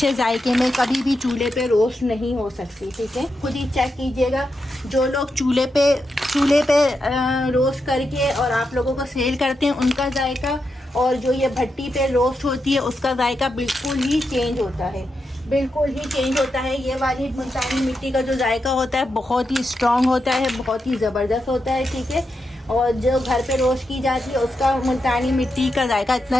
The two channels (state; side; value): normal; both; correlation 0.86